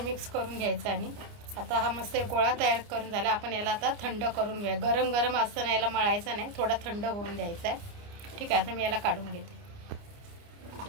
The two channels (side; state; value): left; late; 29 ms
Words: करून घ्यायचा। आणि आता हा मस्त एक गोळा तयार करून झाला। आपण याला आता थंड करून घ्या। गरम गरम असताना याला मळायचं नाही, थोडा थंड होऊन द्यायचा आहे। ठीक आहे, आता मी याला काढून घेते।